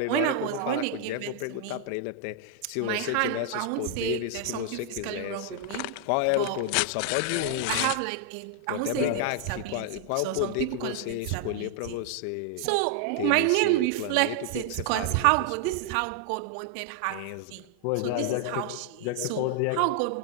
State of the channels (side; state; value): both; different; correlation 0.00